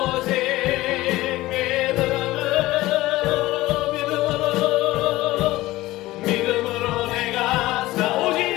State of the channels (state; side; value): quieter; right; 17.8 dB